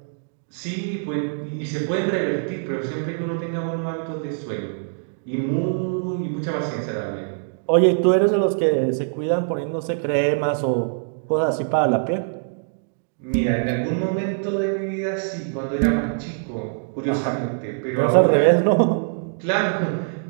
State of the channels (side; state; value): left; silent; digital silence